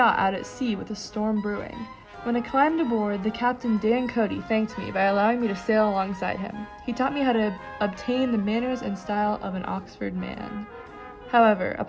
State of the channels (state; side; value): identical; both; correlation 1.00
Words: out at sea with a storm brewing. When I climbed aboard, the captain Dan Cody thanked me by allowing me to sail alongside him. He taught me how to obtain the manners and style of an Oxford man. However,